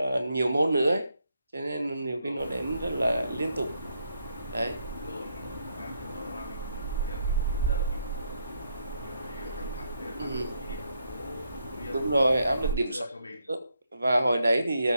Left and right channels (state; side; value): inverted; both; correlation -0.76